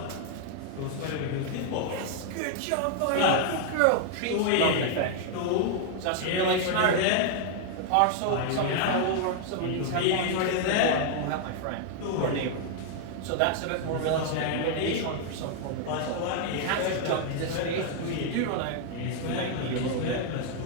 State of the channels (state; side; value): different; both; correlation 0.00